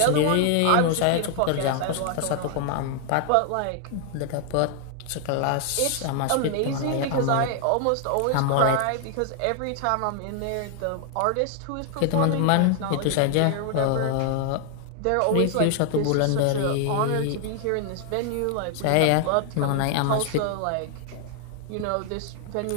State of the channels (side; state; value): both; different; correlation 0.00